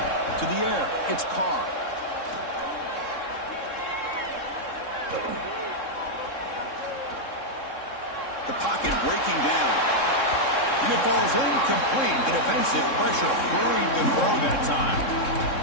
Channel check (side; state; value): right; late; 3.7 ms